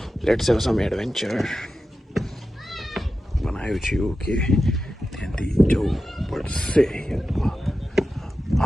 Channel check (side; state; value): both; normal; correlation 0.92